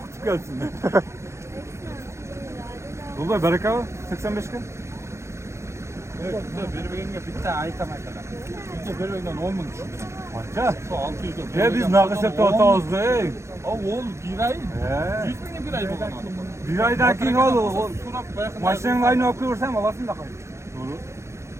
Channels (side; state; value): left; late; 0.14 ms